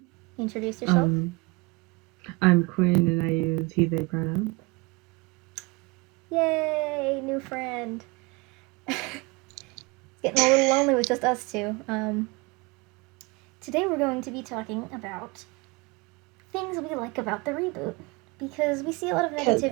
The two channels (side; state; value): left; quieter; 26.4 dB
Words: Introduce yourself. I'm Quinn and I use he, they pronouns. Yay, new friend. It's getting a little lonely with just us two. Today we're going to be talking about things we like about the reboot. Because we see a lot of